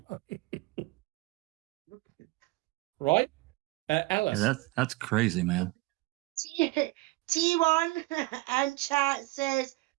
Right? Alice? Yeah, that's crazy, man. T1 and chat says,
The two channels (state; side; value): quieter; left; 21.7 dB